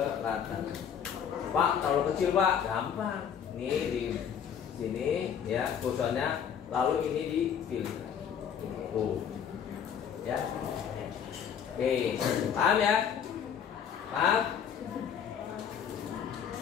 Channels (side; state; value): right; quieter; 8.1 dB